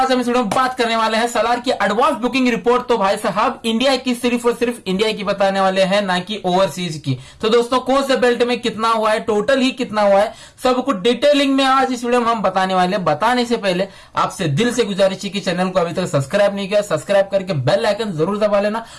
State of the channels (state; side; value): identical; both; correlation 1.00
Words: हम इस वीडियो में बात करने वाले हैं सलार की एडवांस बुकिंग रिपोर्ट। तो भाई साहब, इंडिया की सिर्फ और सिर्फ इंडिया की बताने वाले हैं, ना कि ओवरसीज की। तो दोस्तों, कौन से बेल्ट में कितना हुआ है, टोटल ही कितना हुआ है, सब कुछ डिटेलिंग में आज इस वीडियो में हम बताने वाले हैं। बताने से पहले आपसे दिल से गुजारिश है कि चैनल को अभी तक सब्सक्राइब नहीं किया, सब्सक्राइब करके बेल आइकन जरूर दबा लेना।